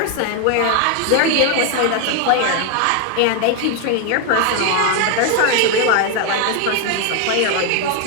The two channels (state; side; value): different; both; correlation 0.01